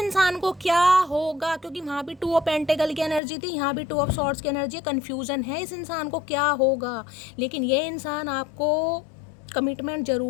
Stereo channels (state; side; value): drops out; right; at 3.2 s